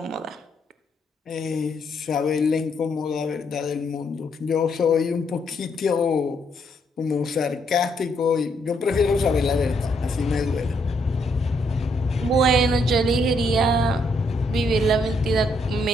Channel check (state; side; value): normal; both; correlation 0.73